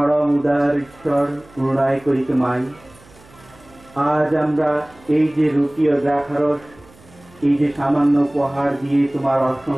উদার ঈশ্বর, করুণায় করি তোমায়। আজ আমরা এই যে রুটি ও দ্রাক্ষারস, এই যে সামান্য উপহার দিয়ে তোমার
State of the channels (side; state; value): right; noise; hum, 26 dB below the sound